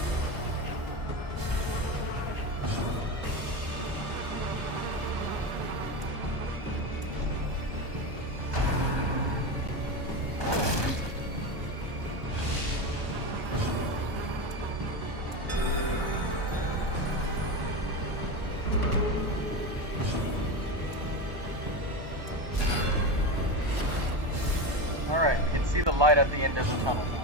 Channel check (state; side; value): late; left; 1.2 ms